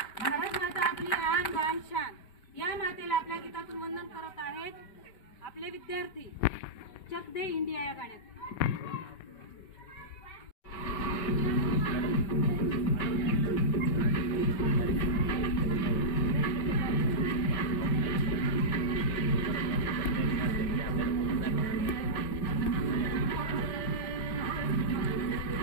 भारत माता आपली आन बान शान, या मातेला आपल्या गीतातून वंदन करत आहेत आपले विद्यार्थी चक दे इंडिया या गाण्यात.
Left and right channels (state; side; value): late; right; 5.2 ms